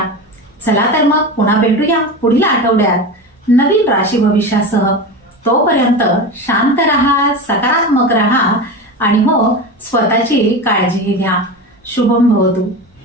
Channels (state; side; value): normal; both; correlation 0.25